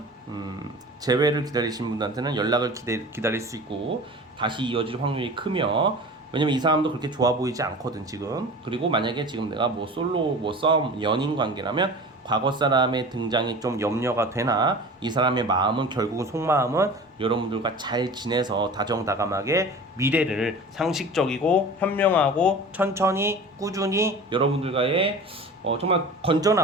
재회를 기다리신 분들한테는 연락을 기다릴 수 있고 다시 이어질 확률이 크며, 왜냐면 이 사람도 그렇게 좋아 보이지 않거든 지금. 그리고 만약에 지금 내가 뭐 솔로, 뭐 썸, 연인 관계라면 과거 사람의 등장이 좀 염려가 되나, 이 사람의 마음은, 결국은 속마음은 여러분들과 잘 지내서 다정다감하게 미래를 상식적이고 현명하고 천천히 꾸준히 여러분들과의 정말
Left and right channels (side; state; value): both; normal; correlation 0.38